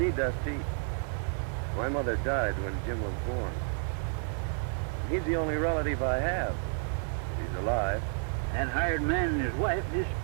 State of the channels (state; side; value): silent; left; 57 dB below the other